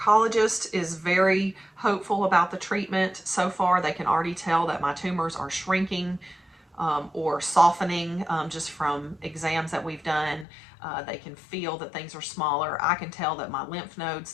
is very hopeful about the treatment. So far, they can already tell that my tumors are shrinking or softening just from exams that we've done. They can feel that things are smaller. I can tell that my lymph nodes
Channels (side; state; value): right; drops out; at 10.5 s